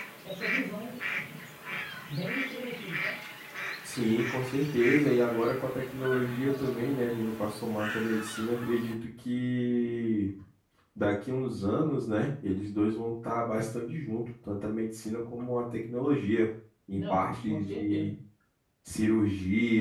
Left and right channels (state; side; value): identical; both; correlation 1.00